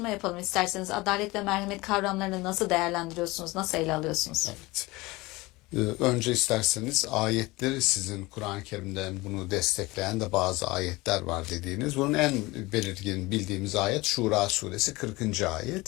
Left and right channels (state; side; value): quieter; right; 21.8 dB